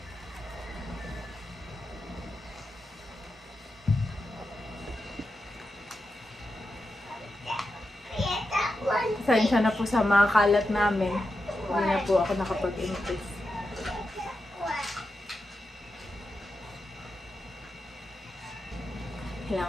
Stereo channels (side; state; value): both; normal; correlation 0.88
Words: Pasensya na po sa mga kalat namin. Hindi na po ako nakapag-impress.